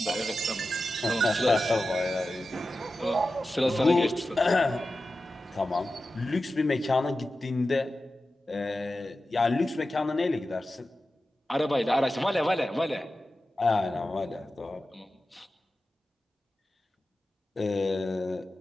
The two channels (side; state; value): both; normal; correlation 0.93